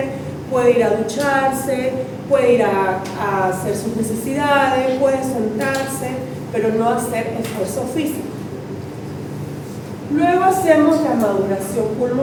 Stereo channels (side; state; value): both; identical; correlation 1.00